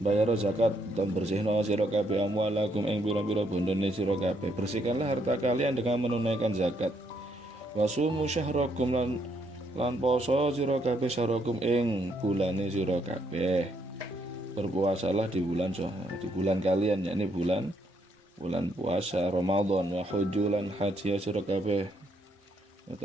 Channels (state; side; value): normal; both; correlation 0.73